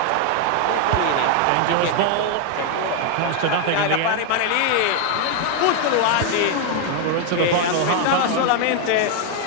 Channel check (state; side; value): different; both; correlation 0.01